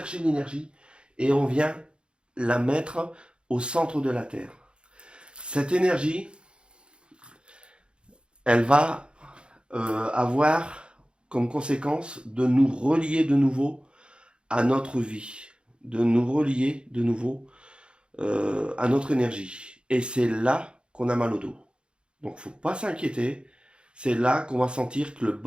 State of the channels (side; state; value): left; late; 0.054 ms